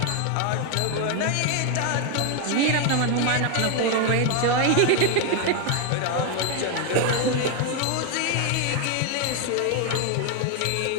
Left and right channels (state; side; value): different; both; correlation 0.01